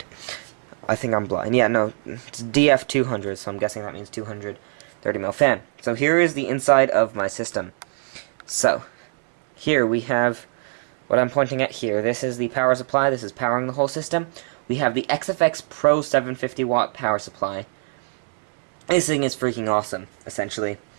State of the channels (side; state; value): left; silent; digital silence